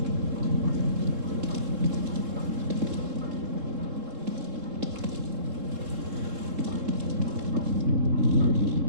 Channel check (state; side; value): late; left; 3.7 ms